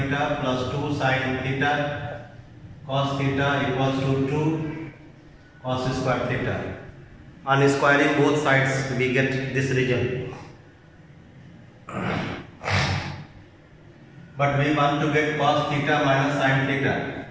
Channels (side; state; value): both; identical; correlation 1.00